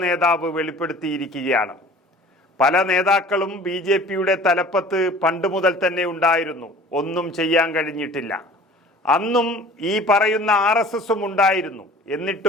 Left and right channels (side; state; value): both; normal; correlation 0.46